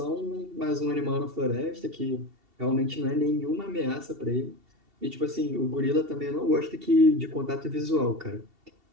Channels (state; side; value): late; left; 2.7 ms